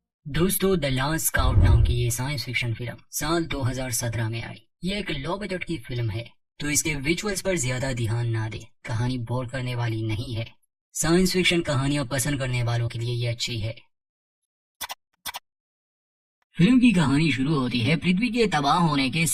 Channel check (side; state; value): both; identical; correlation 1.00